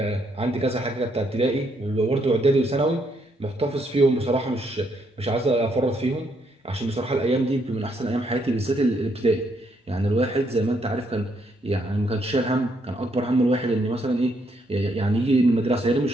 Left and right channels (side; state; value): both; normal; correlation 0.73